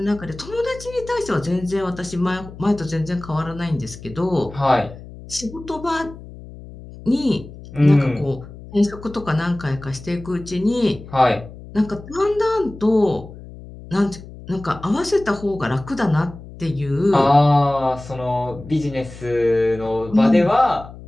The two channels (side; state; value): left; noise; hum, 16 dB below the sound